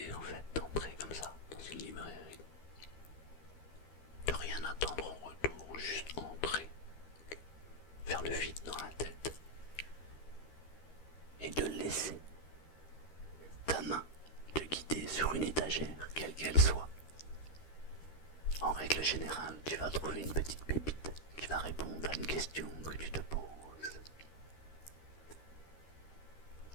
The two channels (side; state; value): right; late; 13 ms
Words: en fait d'entrer comme ça dans une librairie, de rien attendre en retour, juste entrer, faire le vide dans la tête et de laisser ta main te guider sur une étagère, quelle qu'elle soit. En règle générale, tu vas trouver une petite pépite qui va répondre à une question que tu te poses.